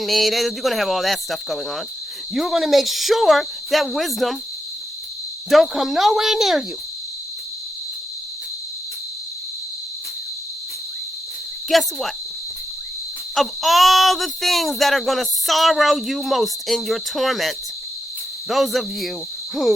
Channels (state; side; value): normal; both; correlation 0.85